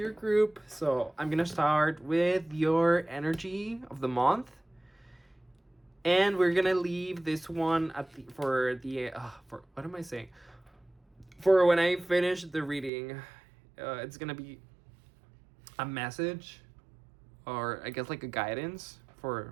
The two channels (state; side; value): drops out; left; at 12.9 s